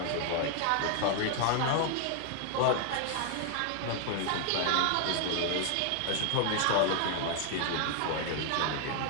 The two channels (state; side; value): different; both; correlation 0.00